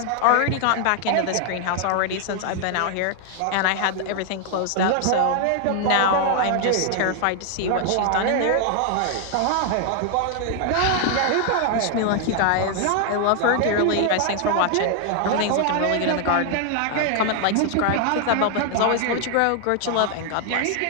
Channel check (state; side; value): different; both; correlation 0.00